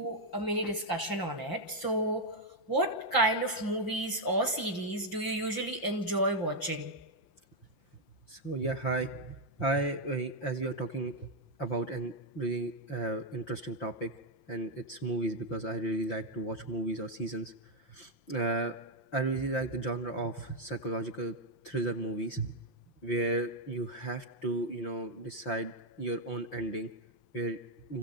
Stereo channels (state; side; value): late; right; 5.8 ms